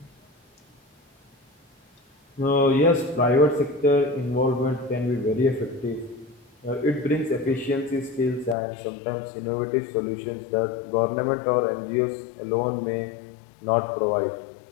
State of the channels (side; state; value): right; drops out; at 8.6 s